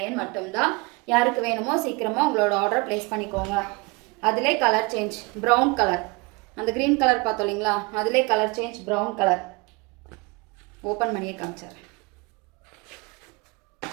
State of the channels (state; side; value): quieter; left; 26.4 dB